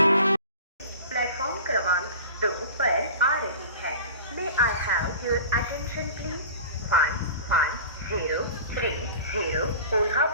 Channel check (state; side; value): inverted; both; correlation -0.38